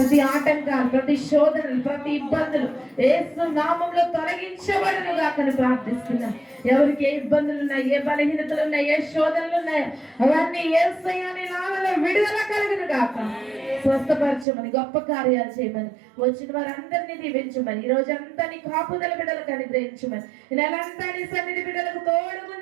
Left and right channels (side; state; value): left; drops out; at 14.5 s